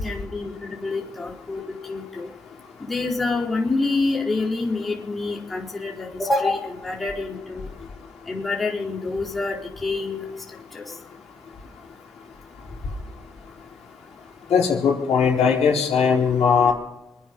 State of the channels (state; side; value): quieter; right; 4.5 dB